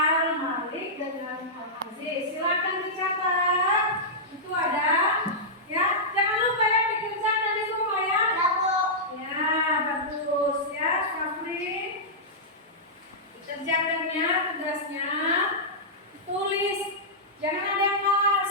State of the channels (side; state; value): both; normal; correlation -0.12